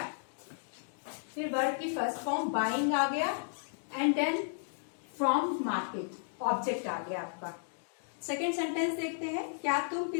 फिर वर्ब की फर्स्ट फॉर्म बाइंग आ गया, and then from market object आ गया आपका। सेकेंड सेंटेंस देखते हैं, क्या तुम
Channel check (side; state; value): right; silent; digital silence